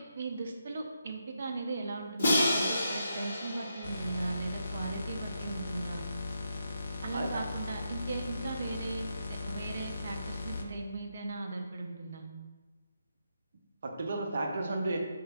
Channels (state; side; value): inverted; both; correlation -0.82